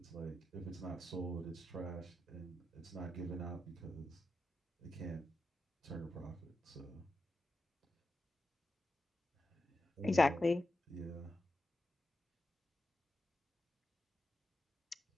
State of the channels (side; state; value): both; normal; correlation 0.89